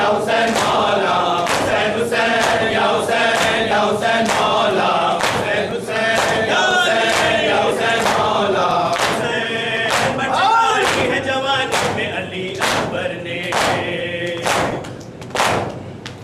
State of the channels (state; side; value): identical; both; correlation 1.00